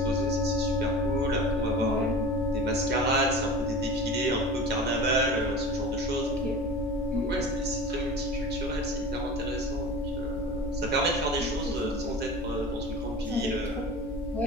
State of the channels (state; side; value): normal; both; correlation 0.35